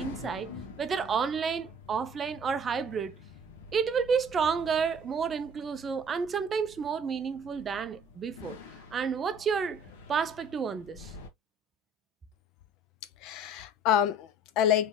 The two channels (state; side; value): normal; both; correlation 0.51